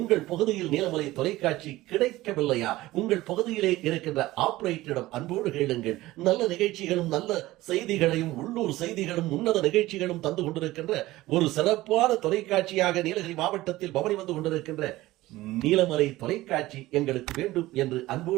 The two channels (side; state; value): left; quieter; 17.5 dB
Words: பகுதியில் நீலமலை தொலைக்காட்சி கிடைக்கவில்லையா, உங்கள் பகுதியிலே இருக்கின்ற ஆபரேட்டரிடம் அன்போடு கேளுங்கள். நல்ல நிகழ்ச்சிகளும் நல்ல செய்திகளையும் உள்ளூர் செய்திகளும் உன்னத நிகழ்ச்சிகளும் தந்து கொண்டிருக்கின்ற ஒரு சிறப்பான தொலைக்காட்சியாக நீலகிரி மாவட்டத்தில் பவனி வந்து கொண்டிருக்கின்ற நீலமலை தொலைக்காட்சி எங்களுக்கு வேண்டும் என்று